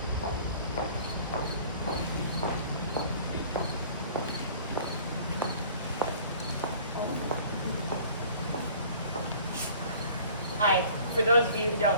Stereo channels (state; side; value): inverted; both; correlation -0.49